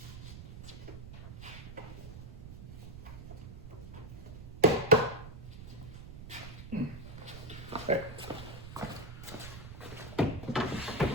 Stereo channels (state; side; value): noise; right; rumble, 11 dB below the sound